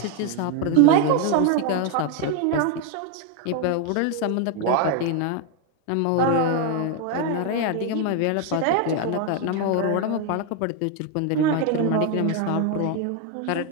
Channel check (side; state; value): both; different; correlation 0.01